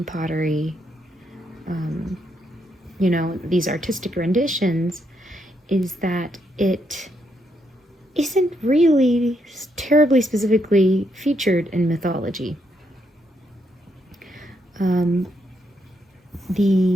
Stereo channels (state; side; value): normal; both; correlation 0.77